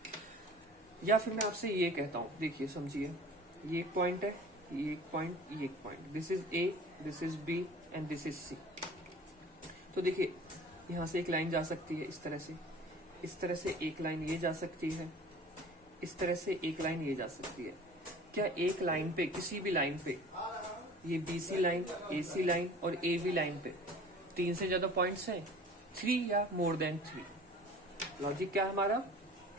या फिर मैं आपसे ये कहता हूं, देखिए समझिए, ये एक पॉइंट है, ये एक पॉइंट, ये एक point, this is A, this is B and this is C. तो देखिए यहां से एक लाइन जा सकती है इस तरह से, इस तरह से एक लाइन ये जा सकती है, इस तरह से एक लाइन ये जा सकती है। क्या एक लाइन पे, किसी भी लाइन पे, ये BC लाइन, AC लाइन और AB लाइन पे तीन से ज्यादा पॉइंट्स हैं? थ्री या मोर देन थ्री। लॉजिक क्या है हमारा?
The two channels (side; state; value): both; normal; correlation 0.44